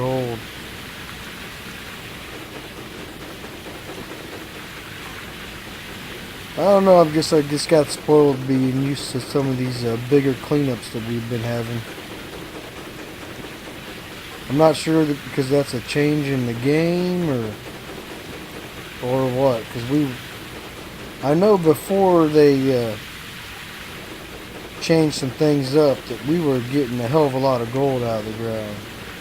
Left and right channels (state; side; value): identical; both; correlation 1.00